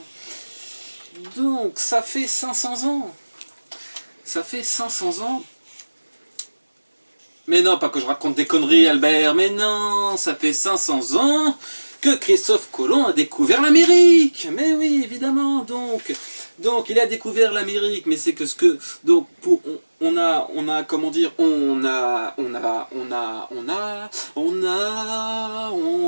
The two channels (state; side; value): inverted; both; correlation -1.00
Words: Donc ça fait 500 ans, ça fait 500 ans. Mais non, pas que je raconte des conneries, Albert, mais non, ça fait 500 ans que Christophe Colomb a découvert l'Amérique. Mais oui, évidemment, donc il a découvert l'Amérique, mais c'est que ce que... Donc, on a